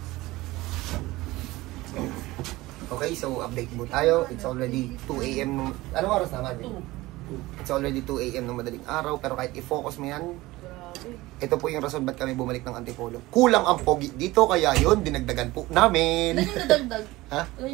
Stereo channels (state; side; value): quieter; left; 19.2 dB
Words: Okay, so update mo tayo. It's already 2 AM. Anong oras naman? It's already 2 AM ng madaling araw. Pero kahit i-focus mo yan, ito po yung rason ba't kami bumalik ng Antipolo. Kulang ang pogi dito, kaya yun, dinagdagan po namin. Ilan yung nadagdag? Ha? Ilan